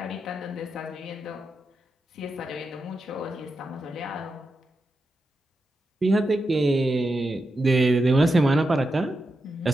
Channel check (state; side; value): normal; both; correlation 0.88